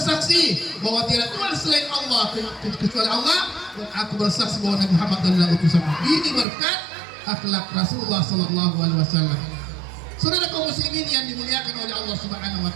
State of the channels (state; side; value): drops out; left; at 6.5 s